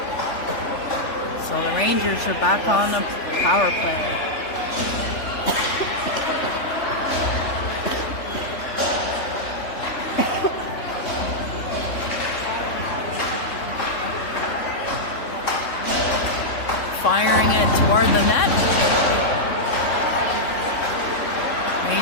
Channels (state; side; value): late; right; 3.4 ms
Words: So the Rangers are back on the power play. Firing it toward the net.